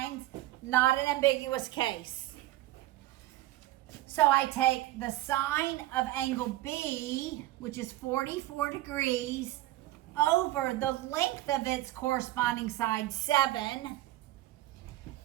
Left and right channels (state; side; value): quieter; left; 16.1 dB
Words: not an ambiguous case. So I take the sine of angle B, which is 44 degrees, over the length of its corresponding side, 7,